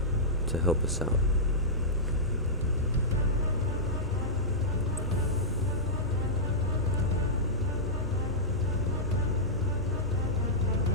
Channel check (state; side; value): normal; both; correlation -0.13